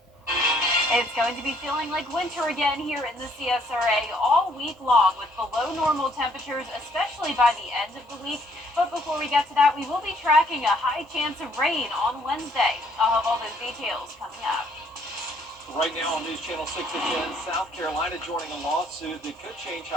It's going to be feeling like winter again here in the CSRA all week long with below normal temperatures, especially by the end of the week. But before we get to that, we will be tracking a high chance of rain on Wednesday. I'll have all those details coming up. Right now on News Channel 6 at 10, South Carolina joining a lawsuit that could change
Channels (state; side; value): normal; both; correlation 0.65